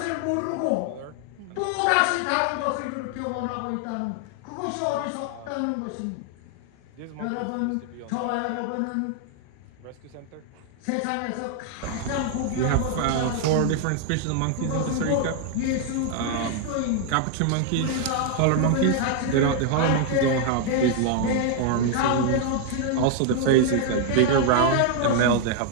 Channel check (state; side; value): different; both; correlation 0.00